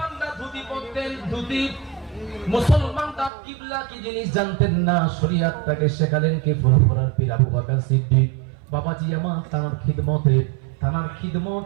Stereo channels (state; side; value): drops out; left; at 3.3 s